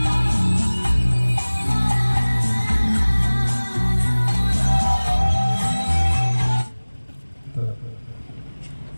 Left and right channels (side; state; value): both; inverted; correlation -1.00